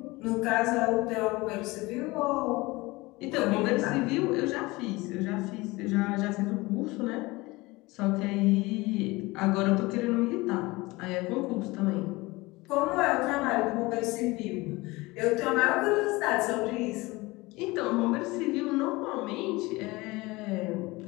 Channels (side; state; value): right; quieter; 22.0 dB